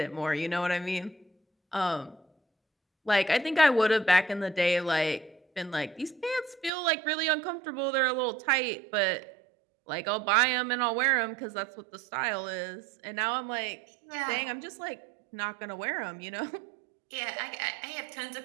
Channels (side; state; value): left; drops out; at 6.7 s